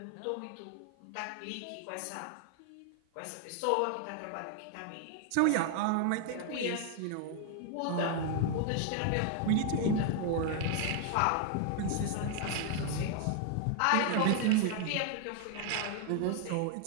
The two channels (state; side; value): different; both; correlation 0.00